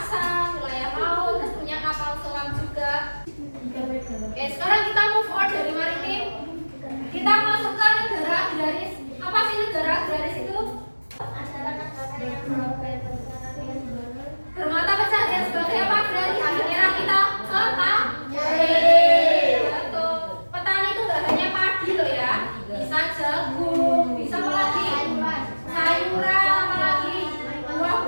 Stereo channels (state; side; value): inverted; both; correlation -1.00